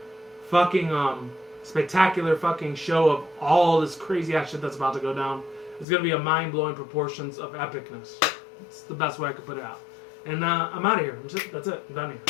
fucking spectacular fucking show of all this crazy ass shit that's about to go down. It's going to be a mind-blowing proportions of epicness. It's the best way I could put it out. And I'm out of here. That's it. I'm done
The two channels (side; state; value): right; drops out; at 5.9 s